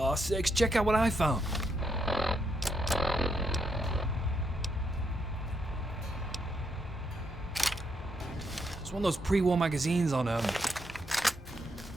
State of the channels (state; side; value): normal; both; correlation 0.78